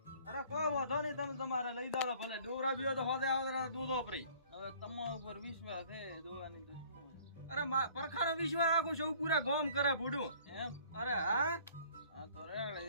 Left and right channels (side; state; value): both; inverted; correlation -0.53